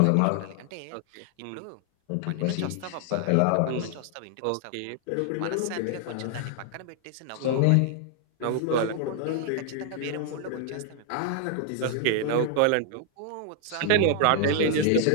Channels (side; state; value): both; different; correlation 0.00